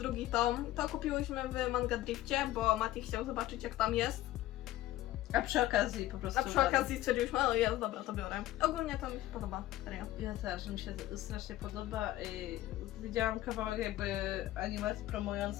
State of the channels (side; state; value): right; quieter; 15.3 dB